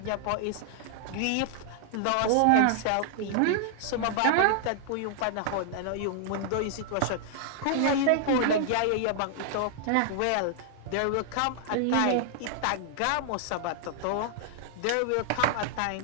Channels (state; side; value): different; both; correlation -0.01